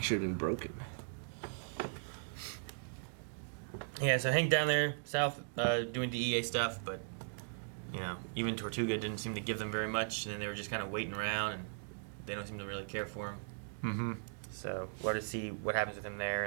and broken. Yeah, so Hank down there, south, doing DEA stuff, but, you know, even Tortuga didn't seem to give them very much, and then they were just kind of waiting around, and they don't seem to really care for him. Mm-hmm. So we'll have to see what happens with him there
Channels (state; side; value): silent; left; digital silence